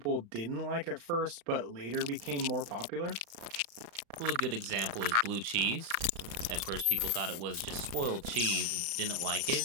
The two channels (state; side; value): late; left; 35 ms